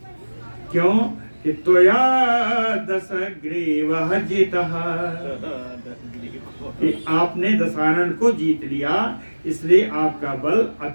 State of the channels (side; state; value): both; inverted; correlation -1.00